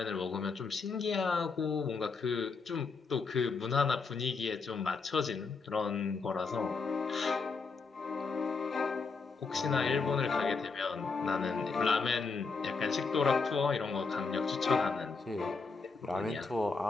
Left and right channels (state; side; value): quieter; right; 4.6 dB